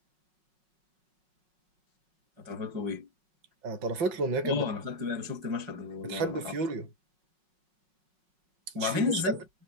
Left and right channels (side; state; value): left; late; 5.4 ms